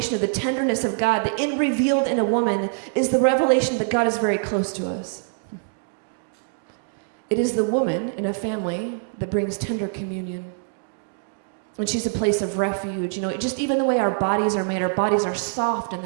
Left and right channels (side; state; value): left; silent; digital silence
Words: of the tenderness of God, the revealed in a woman is the revelation that God is very close to us. It is the woman in a family that brings tender communion. And she's a place of refuge, just even the way our bodies are made, our bodies are soft and